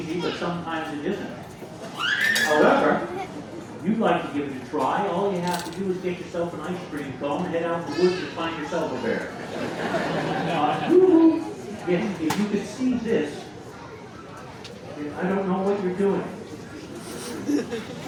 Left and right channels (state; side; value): identical; both; correlation 1.00